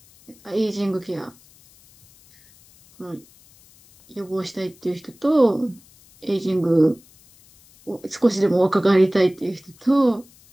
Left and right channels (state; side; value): noise; left; hiss, 28 dB below the sound